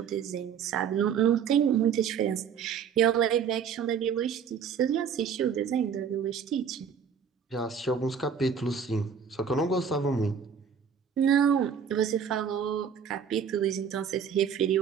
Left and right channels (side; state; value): left; quieter; 7.1 dB